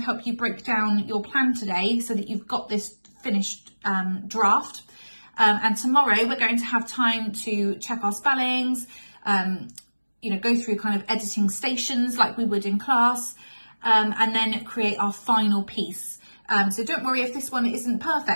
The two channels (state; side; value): inverted; both; correlation -1.00